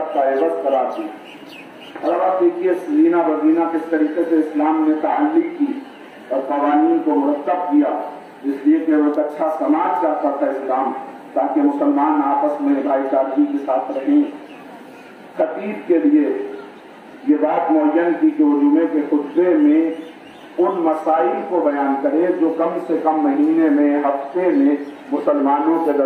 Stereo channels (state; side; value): identical; both; correlation 1.00